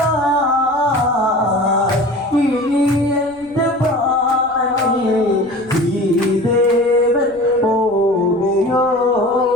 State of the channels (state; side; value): noise; left; rumble, 29 dB below the sound